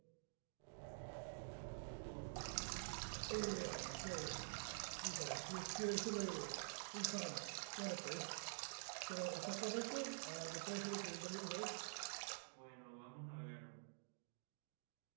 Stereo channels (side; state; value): left; silent; digital silence